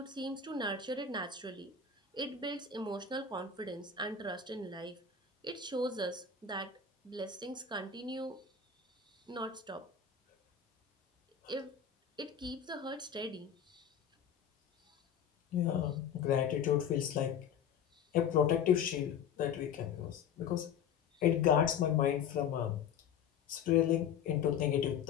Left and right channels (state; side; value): quieter; right; 7.2 dB